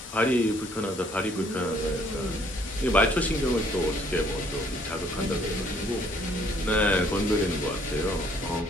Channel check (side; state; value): both; normal; correlation 0.63